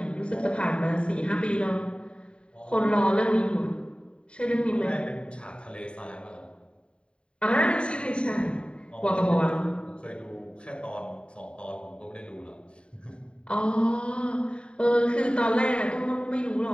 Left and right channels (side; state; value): right; late; 0.054 ms